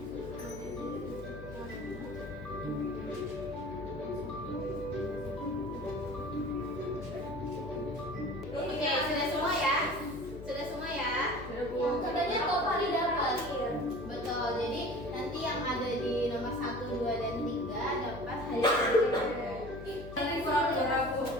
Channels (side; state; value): left; noise; hum, 12 dB below the sound